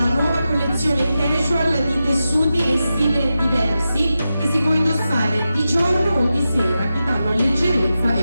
nuova collezione casual di tessuti e stili diversi che si può indossare di giorno o di sera, che danno leggerezza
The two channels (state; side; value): inverted; both; correlation -0.91